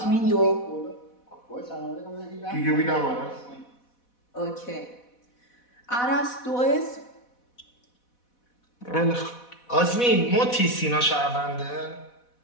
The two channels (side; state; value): right; late; 4.1 ms